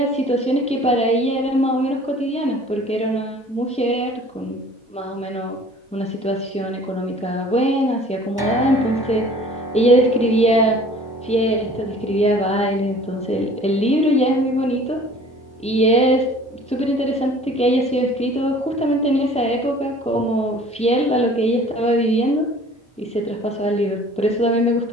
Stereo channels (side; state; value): both; normal; correlation 0.49